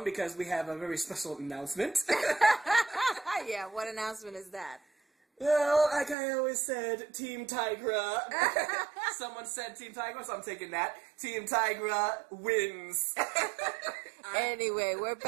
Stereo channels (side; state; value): left; drops out; at 6.2 s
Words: because we have a very special announcement. Yeah, what announcement is that? Well, like I always said, Team Tigra. Someone said Team Tigra, so I'm taking that. Team Tigra wins. Anyway, we're